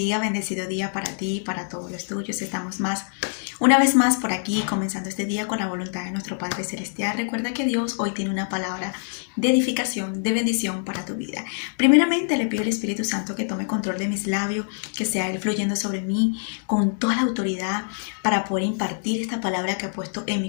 bendecido día para ti y para todos los tuyos. Estamos una vez más por aquí, comenzando este día con la voluntad de nuestro Padre Celestial. Recuerda que Dios hoy tiene una palabra de edificación, de bendición para tu vida. Primeramente le pido al Espíritu Santo que tome control de mis labios, que sea Él fluyendo sobre mí con toda la autoridad para poder impartir esta palabra que ha puesto en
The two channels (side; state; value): right; silent; digital silence